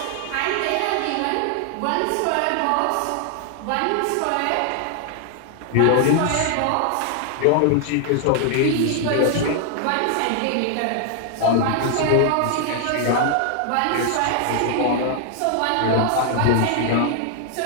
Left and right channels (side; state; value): both; different; correlation 0.00